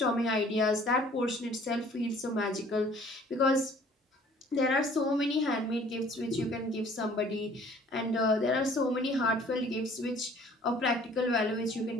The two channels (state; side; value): normal; both; correlation 0.54